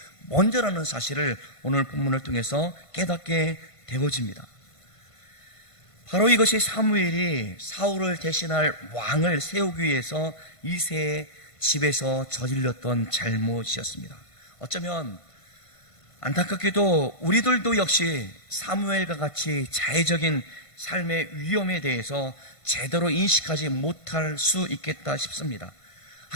먼저라는 사실을 오늘 본문을 통해서 깨닫게 되어집니다. 바로 이것이 사무엘이 사울을 대신할 왕을 세우기 위해서 이새의 집에서 저질렀던 잘못이었습니다. 어쩌면 안타깝게도 우리들도 역시 사무엘과 같이 자의적인 삶의 위험에 대해서 제대로 인식하지 못할 수 있겠다 싶습니다.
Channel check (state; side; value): late; right; 1.5 ms